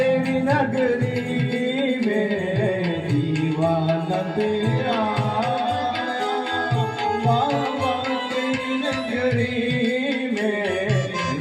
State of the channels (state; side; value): identical; both; correlation 1.00